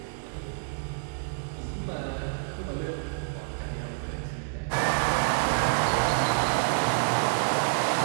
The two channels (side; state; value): left; silent; digital silence